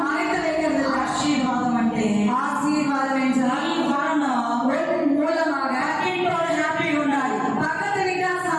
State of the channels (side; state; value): both; identical; correlation 1.00